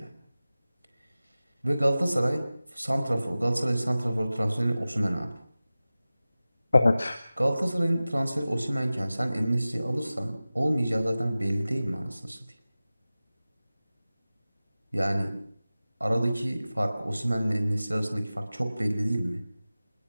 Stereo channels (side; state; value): both; inverted; correlation -0.97